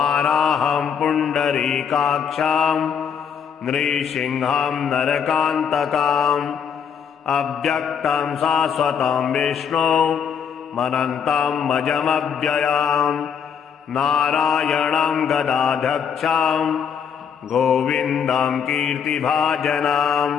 पुण्डरीकाक्षं नृसिंहं नरकान्तकम् अव्यक्तं शाश्वतं विष्णु मनन्तं मजमव्ययं नारायणं गदाध्यक्षं गोविन्दं कीर्तिभाजनं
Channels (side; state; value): right; quieter; 7.3 dB